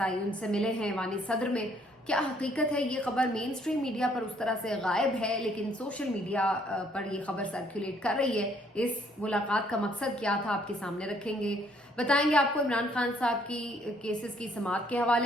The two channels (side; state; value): both; normal; correlation 0.65